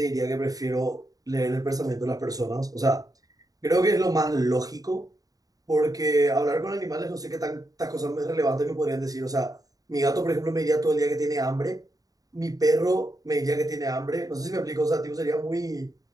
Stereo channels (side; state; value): left; late; 0.18 ms